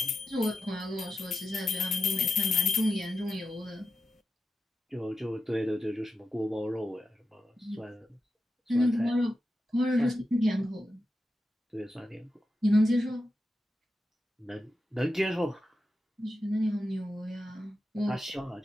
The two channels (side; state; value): both; normal; correlation 0.89